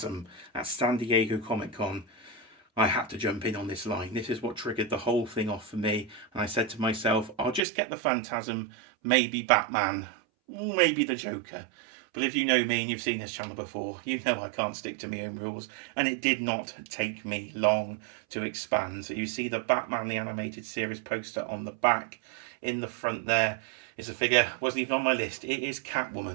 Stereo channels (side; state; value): left; drops out; at 7.6 s